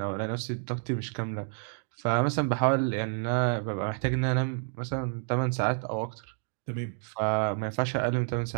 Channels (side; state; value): left; silent; 56 dB below the other